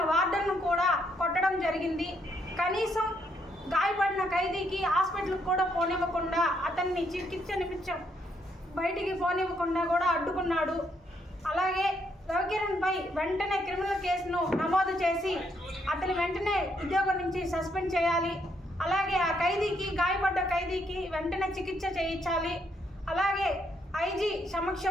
వార్డర్ను కూడా కొట్టడం జరిగింది. కనీసం గాయపడిన ఖైదీకి హాస్పిటల్కి కూడా పోనివ్వకుండా అతన్ని చికిత్స నిమిత్తం బయటికి పోనివ్వకుండా కూడా అడ్డుకున్నాడు. అలాగే రవికిరణ్పై వెంటనే క్రిమినల్ కేసును నమోదు చేసి అతని వెంటనే ఉద్యోగం నుంచి సస్పెండ్ చేయాలి. అలాగే ఆ ఖైదీకి గాయపడ్డ ఖైదీకి వెంటనే చికిత్స చేయించాలి. అలాగే ఐజీ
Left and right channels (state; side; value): normal; both; correlation 0.74